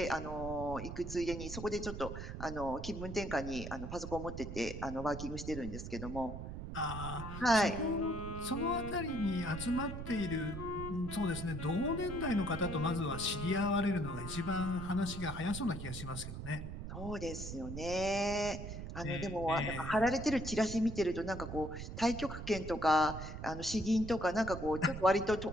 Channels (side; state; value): right; noise; rumble, 8 dB below the sound